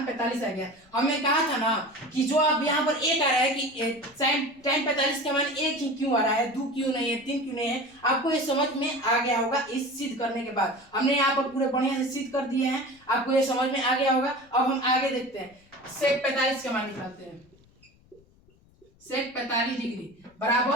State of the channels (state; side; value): noise; left; rumble, 30 dB below the sound